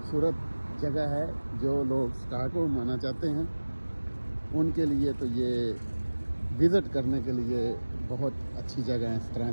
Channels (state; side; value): inverted; both; correlation -1.00